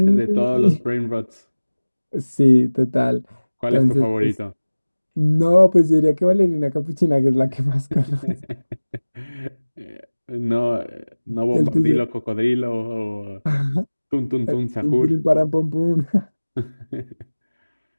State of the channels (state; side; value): inverted; both; correlation -1.00